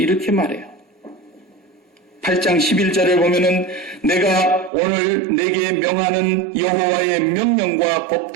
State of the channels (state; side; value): drops out; left; at 4.7 s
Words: 이렇게 말해요. 8장 11절을 보면은 내가 오늘 내게 명하는 여호와의 명령과